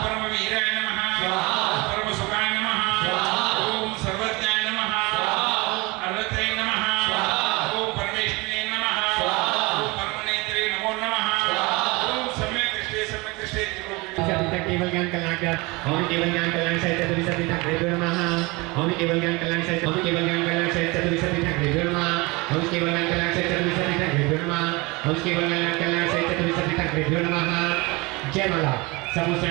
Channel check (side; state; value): left; quieter; 25.0 dB